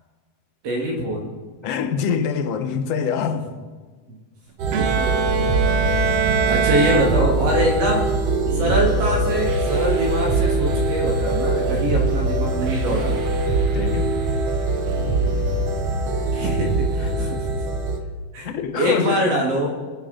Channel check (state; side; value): late; left; 7.7 ms